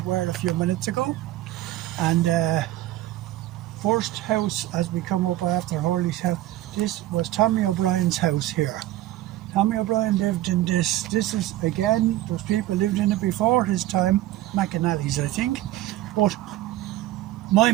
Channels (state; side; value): quieter; left; 14.9 dB